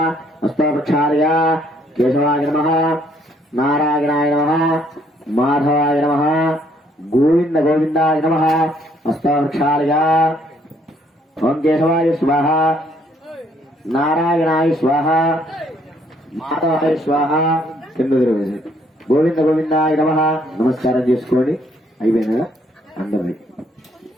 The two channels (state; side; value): normal; both; correlation 0.66